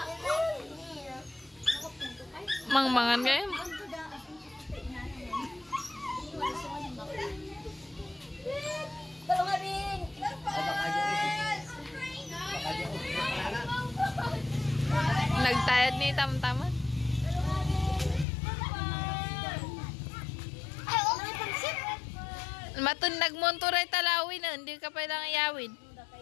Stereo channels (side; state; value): right; drops out; at 18.2 s